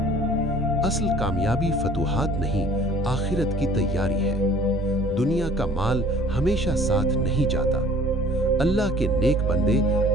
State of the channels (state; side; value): normal; both; correlation 0.51